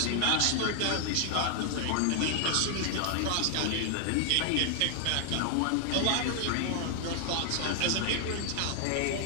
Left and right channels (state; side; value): different; both; correlation 0.00